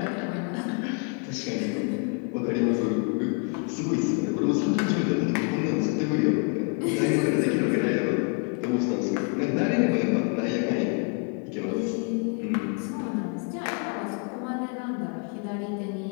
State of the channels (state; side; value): quieter; right; 36.4 dB